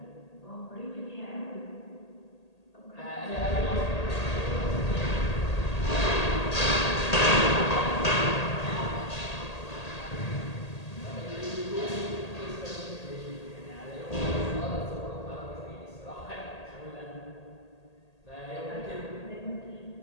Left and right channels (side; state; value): right; late; 1.8 ms